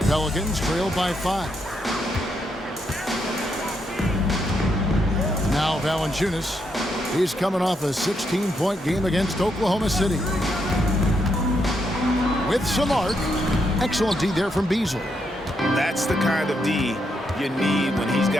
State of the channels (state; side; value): normal; both; correlation 0.79